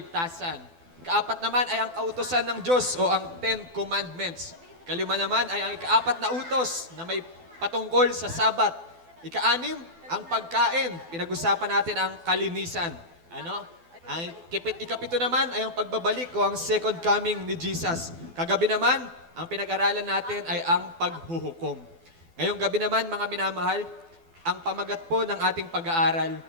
Ikaapat naman ay ang kautosan ng Diyos o ang Ten Commandments. Kalima naman ay ang ikaapat na utos na may patungkol sa Sabat. Ikaanim, ang pagkain. Pinag-usapan natin ang kalinisan. Ano? Ang ikapito naman ay ang pagbabalik o ang second coming ni Jesus. Kagabi naman, ang pinag-aralan natin ay ang paghuhukom. Ngayong gabi naman, mga minamahal, ang pamagat po ng ating pag-aaral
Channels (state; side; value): late; left; 12 ms